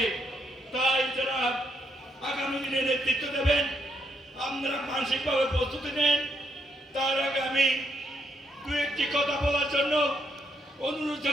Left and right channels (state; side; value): normal; both; correlation 0.76